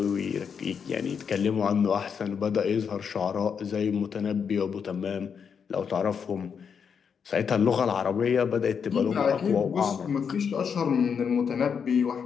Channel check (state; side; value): quieter; right; 6.7 dB